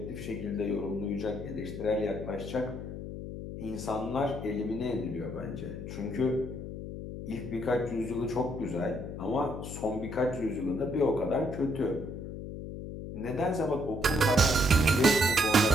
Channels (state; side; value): noise; left; hum, 8 dB below the sound